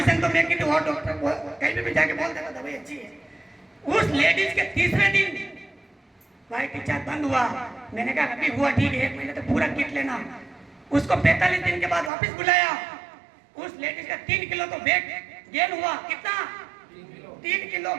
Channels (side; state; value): left; drops out; at 12.1 s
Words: तो मैं किसी और डॉक्टर को कहीं भी जाके बोल देता दवाई अच्छी है। उस लेडीज के तीसरे दिन व्हाइट डिस्चार्ज बंद हुआ। मैंने कहा अभी हुआ ठीक है, 1 महीने तक पूरा किट लेना। उसको 45 दिन के बाद वापस बुलाया। उस लेडीज का 3 किलो तो वेट गेन हुआ। कितना? 3 किलो